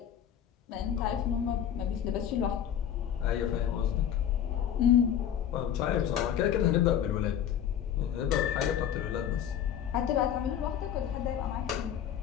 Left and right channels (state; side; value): quieter; right; 9.6 dB